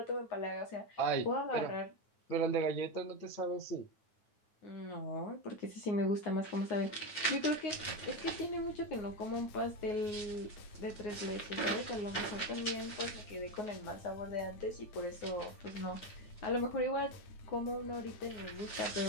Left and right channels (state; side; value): late; right; 9.1 ms